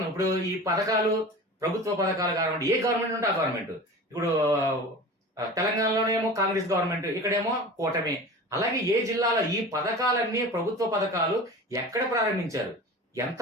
ఇప్పుడు ఈ పథకాలు ప్రభుత్వ పథకాలు కానివ్వండి, ఏ గవర్నమెంట్ ఉంటే ఆ గవర్నమెంట్. ఇప్పుడు తెలంగాణలోనేమో కాంగ్రెస్ గవర్నమెంట్, ఇక్కడేమో కూటమి. అలాగే ఏ జిల్లాలో ఈ పథకాలన్నీ ప్రభుత్వ పథకాలు ఎక్కడ ప్రారంభించారు, ఎంత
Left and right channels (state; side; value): normal; both; correlation 0.35